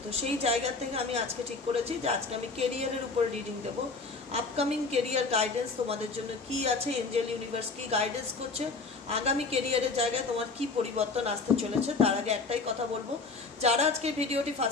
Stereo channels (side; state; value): right; quieter; 4.0 dB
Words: তো সেই জায়গা থেকে আমি আজকে ঠিক করেছি যে আজকে আমি কেরিয়ারের উপর রিডিং দেবো। আপকামিং কেরিয়ার গাইডেন্স তোমাদের জন্য কি আছে, এঞ্জেল ইউনিভার্স কি গাইডেন্স করছে, আগামী কেরিয়ারের জায়গায় তোমার কি পরিবর্তন আসতে চলেছে। তার আগে একটাই কথা বলবো, যারা আজকে ভিডিওটি